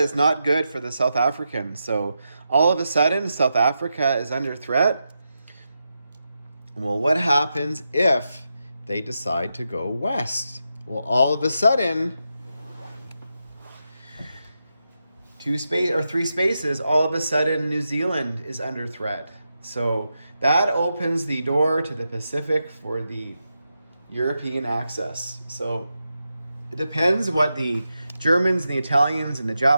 not good for the South Africans. So all of a sudden, South Africa is under threat. Well, what happens if they decide to go west? Well, all of a sudden, 3 spaces, all of a sudden New Zealand is under threat. So that opens the door to the Pacific for the European access. So it depends what the Germans and the Italians and the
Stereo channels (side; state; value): both; inverted; correlation -0.87